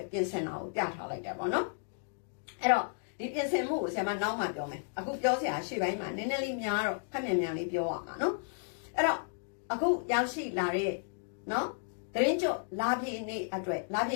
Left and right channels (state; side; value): silent; right; digital silence